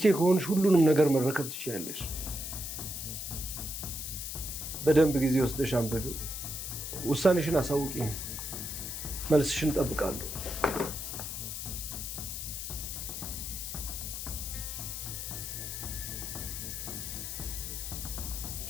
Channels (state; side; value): noise; left; hiss, 5 dB below the sound